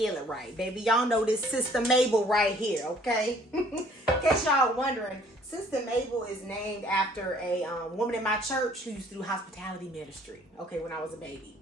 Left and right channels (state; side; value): normal; both; correlation 0.57